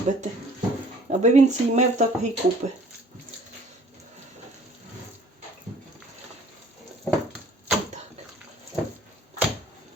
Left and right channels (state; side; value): normal; both; correlation 0.54